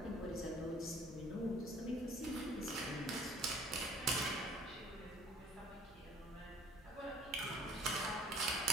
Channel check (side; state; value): right; noise; hum, 24 dB below the sound